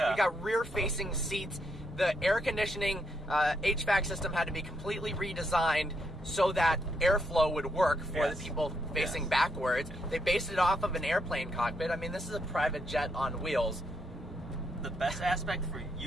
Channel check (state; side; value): normal; both; correlation 0.77